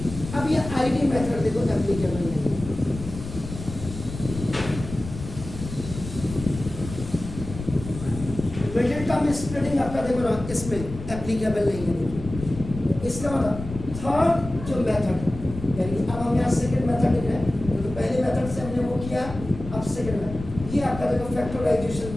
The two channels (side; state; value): left; noise; rumble, 10 dB below the sound